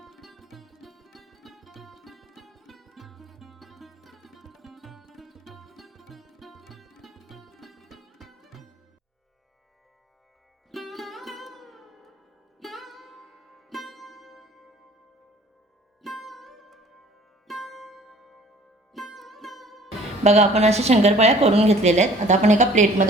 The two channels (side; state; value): both; normal; correlation 0.52